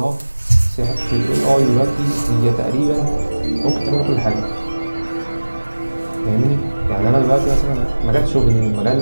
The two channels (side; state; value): both; inverted; correlation -1.00